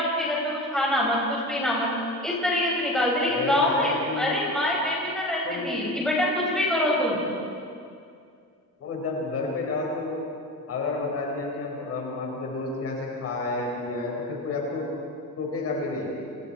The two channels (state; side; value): normal; both; correlation 0.29